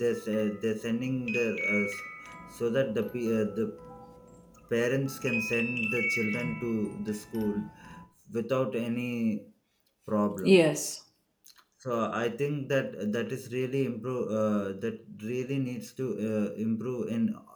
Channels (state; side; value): identical; both; correlation 1.00